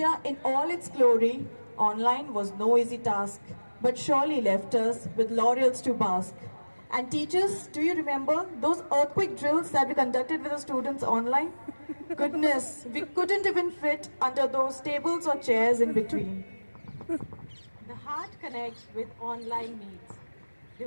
in all its glory, online was no easy task, but surely left us with laurels to bask. And teachers, do you remember those earthquake drills that we conducted with the students online? Goodness, we couldn't even fit under those tables or chairs in between. The heart connects with online meets,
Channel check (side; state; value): both; inverted; correlation -1.00